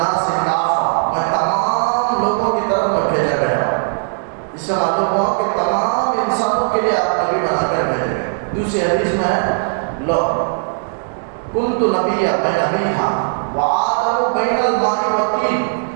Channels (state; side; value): silent; left; digital silence